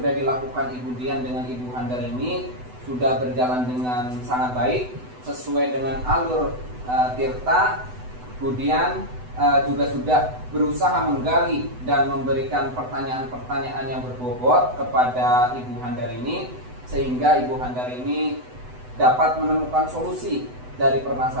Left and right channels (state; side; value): late; left; 8.0 ms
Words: dilakukan Ibu Dian dengan Ibu Handar ini sudah berjalan dengan sangat baik, sesuai dengan alur tirta. Kemudian juga sudah berusaha menggali dan memberikan pertanyaan-pertanyaan yang berbobot kepada Ibu Handar ini, sehingga Ibu Handar ini dapat menemukan solusi dari